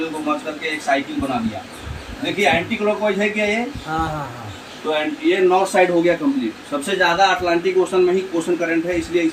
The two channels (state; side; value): identical; both; correlation 1.00